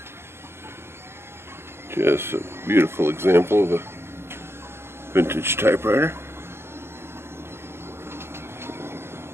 Just a beautiful example of a vintage typewriter.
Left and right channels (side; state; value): left; late; 0.12 ms